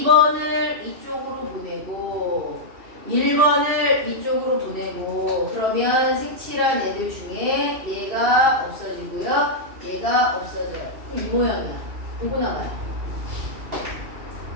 이쪽으로 보내고 1번을 이쪽으로 보내고 그러면 색칠한 애들 중에 얘가 없어지고요. 얘가 없어져요. 이 모양이야. 요거 남아요.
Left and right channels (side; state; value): left; late; 2.7 ms